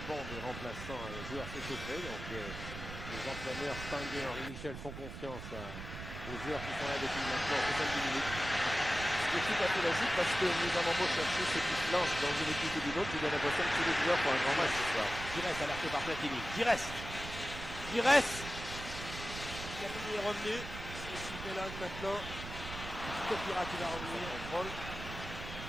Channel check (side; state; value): right; noise; rumble, 9 dB below the sound